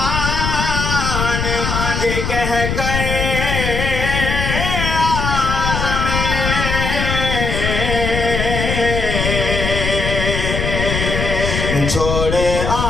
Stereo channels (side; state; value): left; noise; rumble, 2 dB below the sound